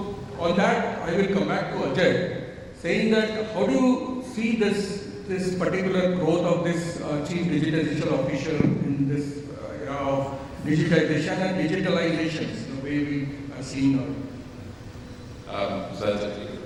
on that, I will come back to Ajay, saying that how do you see this particular growth of this chief digitization officer in this era of digitization and digitalizations, the way we are seeing now? So that's a very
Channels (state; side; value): identical; both; correlation 1.00